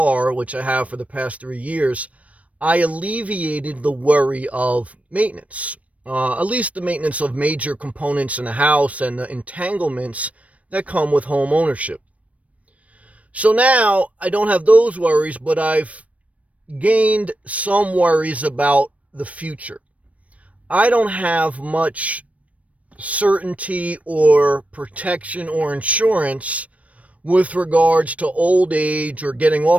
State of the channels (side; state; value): left; late; 0.066 ms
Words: which I have for the past 3 years, I alleviated the worry of maintenance, at least the maintenance of major components in the house and the entanglements that come with home ownership. So now I don't have those worries, but I've gained some worries about the future. I don't have much certainty or protection or insurance with regards to old age or getting